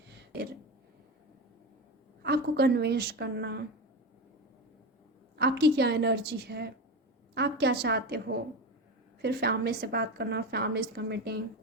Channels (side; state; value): both; normal; correlation 0.20